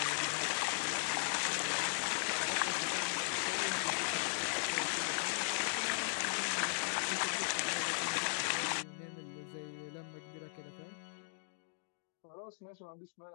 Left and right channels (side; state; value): right; silent; digital silence